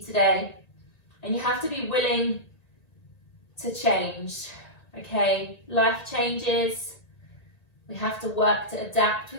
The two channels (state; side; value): late; right; 1.9 ms